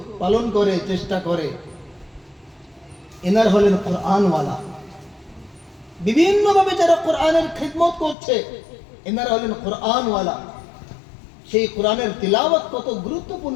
পালন করে, চেষ্টা করে, এনার হলেন কোরআনওয়ালা। বিভিন্নভাবে যারা কোরআনের খিদমত করছে, এনারা হলেন কোরআনওয়ালা। সেই কোরআনের তিলাওয়াত কত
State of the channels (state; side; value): drops out; right; at 8.2 s